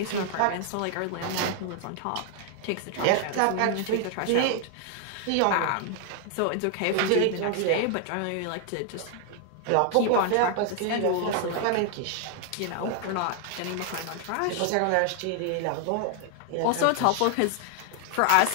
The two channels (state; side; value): different; both; correlation 0.00